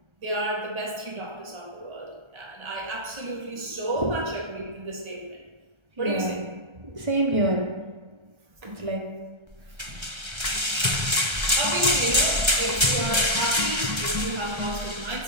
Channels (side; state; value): left; late; 1.3 ms